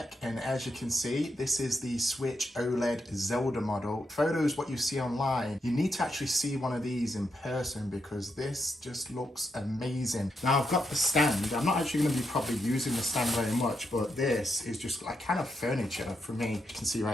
and as you can see, this is the Switch OLED Zelda model. Photos, what you see online, you need to actually see one of these in person because this just looks amazing. Now I've got the stand. I'm not actually going to be probably using the stand very much, but this is just like kind of furniture for me. You can see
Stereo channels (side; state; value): both; normal; correlation 0.82